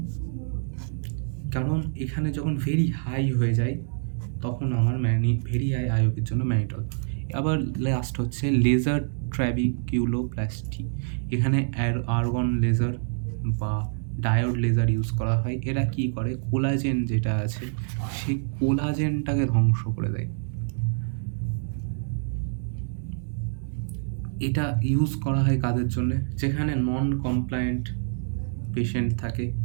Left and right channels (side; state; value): left; silent; digital silence